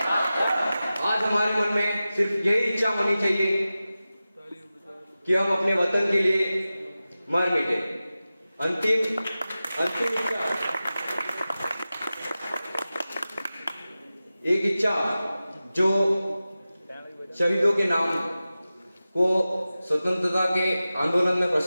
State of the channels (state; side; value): inverted; both; correlation -0.95